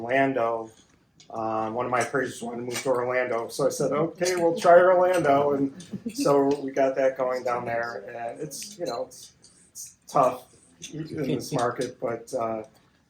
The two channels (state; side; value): identical; both; correlation 1.00